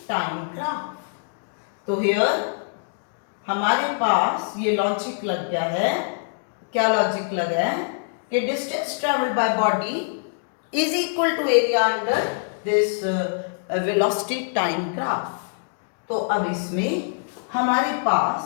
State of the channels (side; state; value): right; silent; digital silence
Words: time graph. तो here हमारे पास ये लॉजिक लग गया है, क्या लॉजिक लगा है कि distance traveled by body is equal to area under this velocity time graph. तो अब इसमें हमारे पास